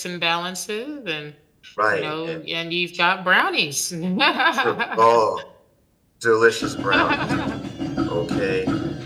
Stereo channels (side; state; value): both; identical; correlation 1.00